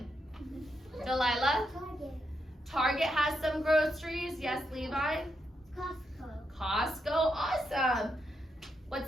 Delilah? Target. Target has some groceries. Yes, Levi? Costco. Costco, awesome.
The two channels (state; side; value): normal; both; correlation 0.82